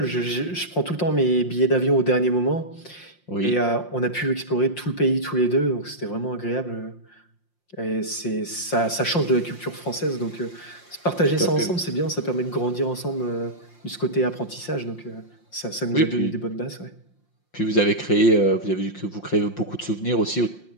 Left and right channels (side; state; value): right; late; 5.7 ms